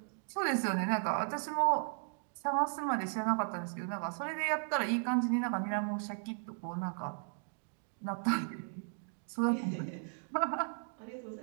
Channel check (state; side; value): silent; left; 54 dB below the other